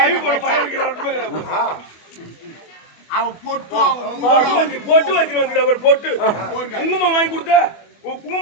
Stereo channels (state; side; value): late; right; 24 ms